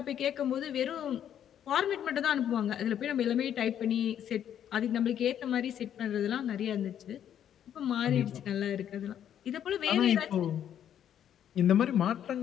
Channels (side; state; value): right; quieter; 9.8 dB